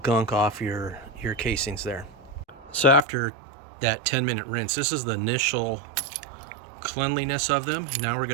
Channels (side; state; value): left; drops out; at 3.0 s